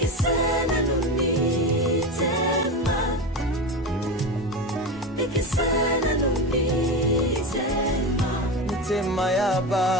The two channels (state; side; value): normal; both; correlation 0.21